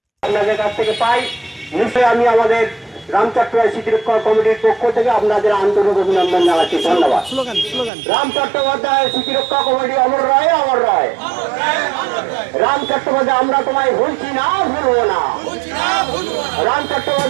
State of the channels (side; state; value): left; drops out; at 7.9 s